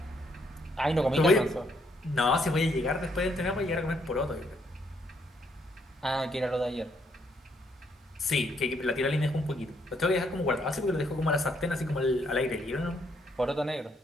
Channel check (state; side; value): normal; both; correlation 0.72